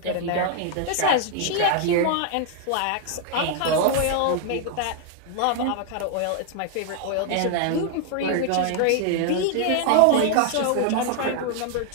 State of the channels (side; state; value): both; different; correlation 0.00